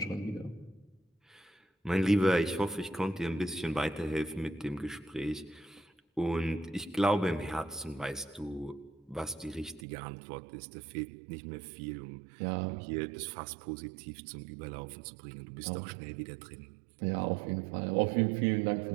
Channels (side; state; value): left; drops out; at 9.9 s